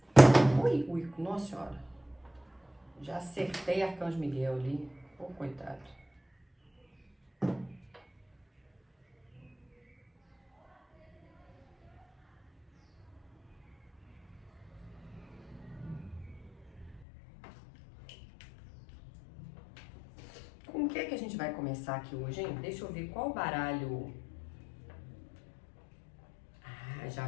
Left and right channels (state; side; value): drops out; right; at 17.1 s